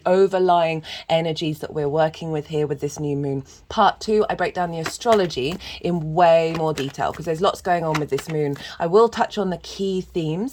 overlying energies that we're working with here with this new moon. Part 2, I break down the astrology in way more detail because there's lots going on with this moon. I will touch on the key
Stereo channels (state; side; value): identical; both; correlation 1.00